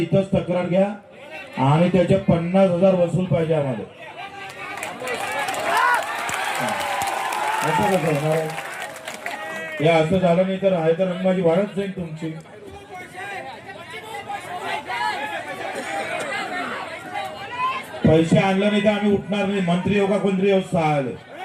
तक्रार घ्या आणि त्याचे 50,000 वसूल पाहिजे आम्हाला. असं कसं होणार आहे? हे असं झालं नाही तर आहे तर रंगबाजी वाढत जाईल तुमची. पैसे आणले नाही तर आम्ही उठणार नाही. मंत्री हो का कोणतरी हो, सहायला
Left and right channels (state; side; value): identical; both; correlation 1.00